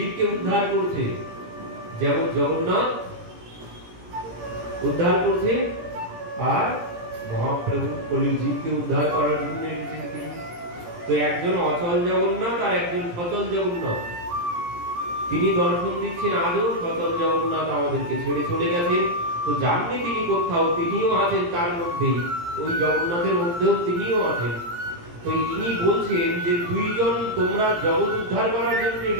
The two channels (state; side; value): late; left; 17 ms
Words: উদ্ধার করছে। যেমন জগন্নাথ উদ্ধার করছে, আর মহাপ্রভু কলির জীবকে উদ্ধার করার জন্য এসেছেন তিনি। তো একজন অচল জগন্নাথ আর একজন সচল জগন্নাথ, তিনি দর্শন দিচ্ছেন। আজও সচল জগন্নাথ আমাদেরকে ছেড়ে চলে গেছেন, তো জাননি তিনি কোথাও, তিনিও আছেন তার মধ্যেই, ওই জগন্নাথের মধ্যেও তিনিও আছেন। তো ইনি বলছেন যে দুইজন তোমরা জগৎ উদ্ধার করার জন্য